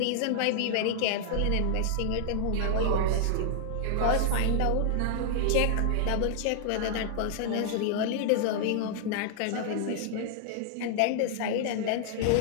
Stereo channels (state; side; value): different; both; correlation 0.00